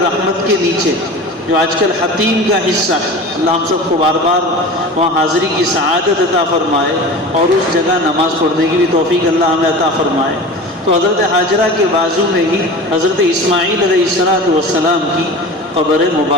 رحمت کے نیچے جو آج کل حتیم کا حصہ ہے، اللہ ہم سب کو بار بار وہاں حاضری کی سعادت عطا فرمائے اور اس جگہ نماز پڑھنے کی بھی توفیق اللہ ہمیں عطا فرمائے۔ تو حضرت حاجرہ کے بازو میں ہی حضرت اسماعیل علیہ السلام کی قبر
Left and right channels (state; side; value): normal; both; correlation 0.35